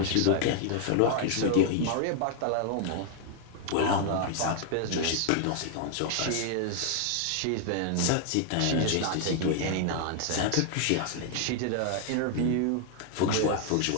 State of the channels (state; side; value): different; both; correlation 0.00